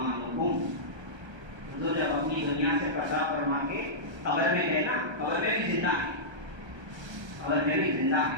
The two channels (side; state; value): left; late; 1.3 ms